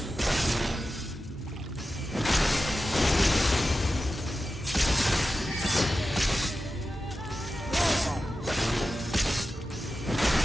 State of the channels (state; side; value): normal; both; correlation 0.92